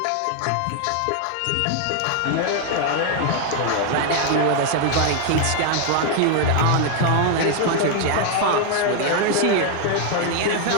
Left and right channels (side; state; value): both; different; correlation 0.00